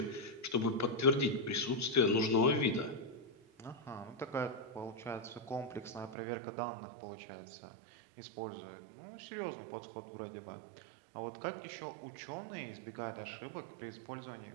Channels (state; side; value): drops out; left; at 6.2 s